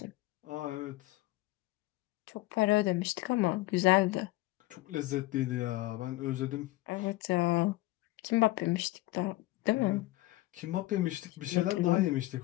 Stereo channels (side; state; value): right; quieter; 18.8 dB